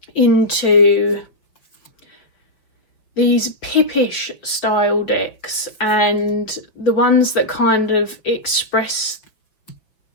into these pippish style decks and the ones that kind of express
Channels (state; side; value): late; right; 5.4 ms